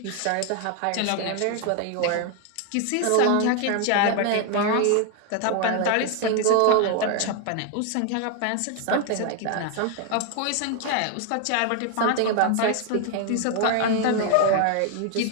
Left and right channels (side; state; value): both; different; correlation 0.00